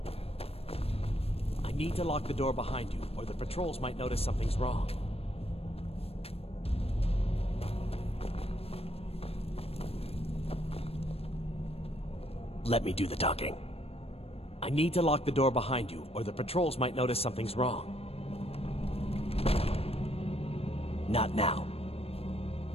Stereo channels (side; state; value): right; late; 0.28 ms